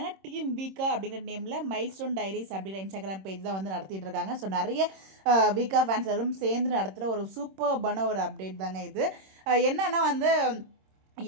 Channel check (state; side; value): late; left; 26 ms